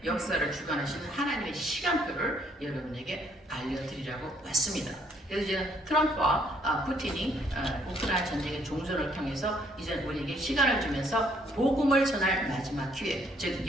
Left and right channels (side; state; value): both; normal; correlation 0.66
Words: 역사를 주관하시는 하나님의 시간표를 여러분에게 알려드리려고 왔습니다. 그래서 이제 트럼프와 푸틴이 우크라이나 전쟁의 종전을 통해서 이제 우리에게 시간을 주면서 복음을 전할 마지막 기회, 즉